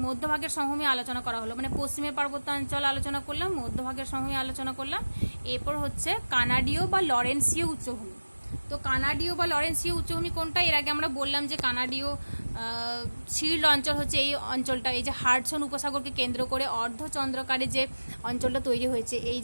মধ্যভাগের সমভূমি আলোচনা করা হলো, মানে পশ্চিমের পার্বত্যাঞ্চল আলোচনা করলাম, মধ্যভাগের সমভূমি আলোচনা করলাম। এরপর হচ্ছে কানাডীয় বা লরেন্সীয় উচ্চভূমি। তো কানাডীয় বা লরেন্সীয় উচ্চভূমি কোনটা? এর আগে আমরা বললাম যে কানাডীয় শিল্ড অঞ্চল হচ্ছে এই অঞ্চলটা, এই যে হাডসন উপসাগরকে কেন্দ্র করে অর্ধচন্দ্রাকারে যে অঞ্চলটা তৈরি হয়েছে, এই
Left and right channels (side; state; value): both; inverted; correlation -1.00